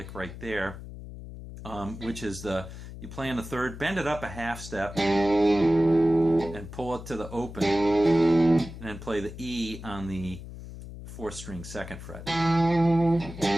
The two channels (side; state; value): left; noise; hum, 12 dB below the sound